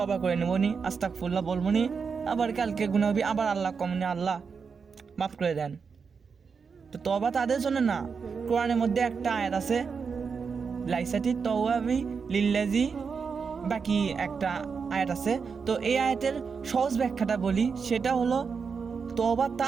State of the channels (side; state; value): left; quieter; 5.6 dB